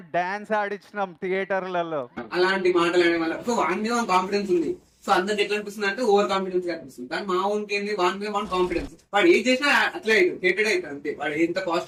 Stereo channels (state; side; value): identical; both; correlation 1.00